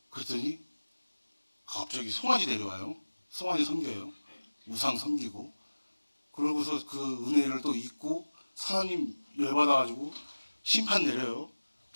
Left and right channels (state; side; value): inverted; both; correlation -1.00